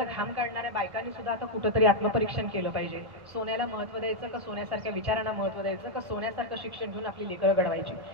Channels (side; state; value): left; late; 1.6 ms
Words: घाम काढणाऱ्या बायकांनी सुद्धा आता कुठंतरी आत्मपरीक्षण केलं पाहिजे. सोन्याला महत्व द्यायचं का सोन्यासारख्या विचारांना महत्व द्यायचं का सोन्यासारखं शिक्षण घेऊन आपली लेकरं घडवायची?